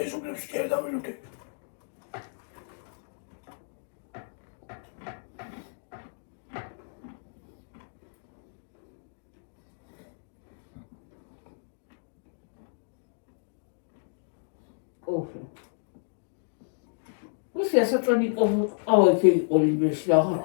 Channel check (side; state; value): right; silent; digital silence